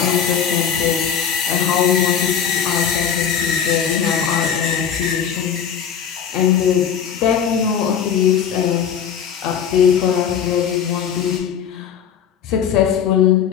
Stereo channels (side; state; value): right; quieter; 8.0 dB